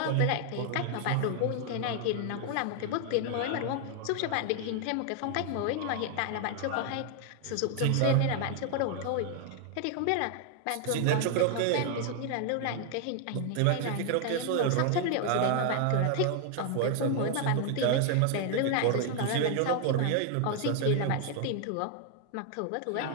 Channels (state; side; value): different; both; correlation 0.00